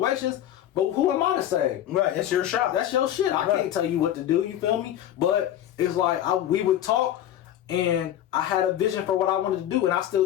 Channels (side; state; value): right; quieter; 11.7 dB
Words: but who am I to say? Right, it's your shop. That's your shit. I can't tell you what to do, you feel me? But it's like we would talk and I had a vision for what I wanted to do and I